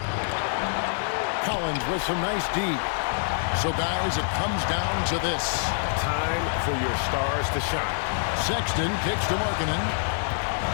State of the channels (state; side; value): silent; right; digital silence